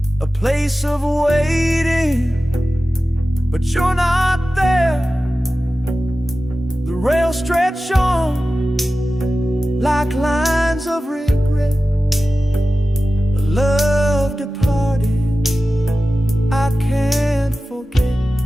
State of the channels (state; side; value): normal; both; correlation 0.95